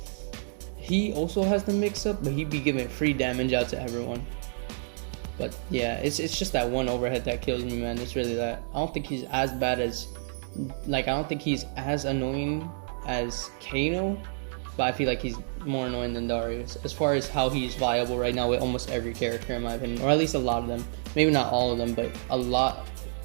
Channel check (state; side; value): silent; left; digital silence